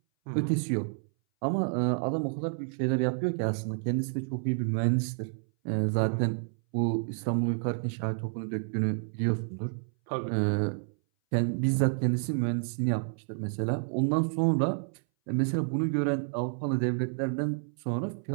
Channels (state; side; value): silent; left; 58 dB below the other